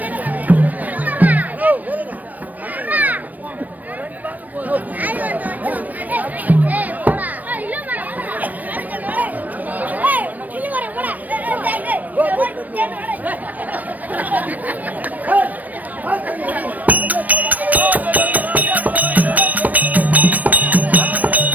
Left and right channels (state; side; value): late; left; 0.080 ms